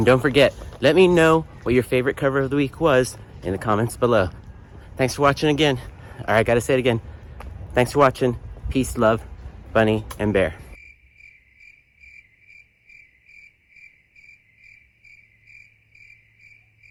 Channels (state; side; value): identical; both; correlation 1.00